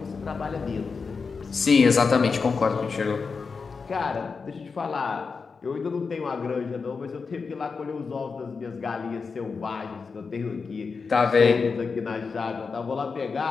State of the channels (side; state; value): right; quieter; 5.0 dB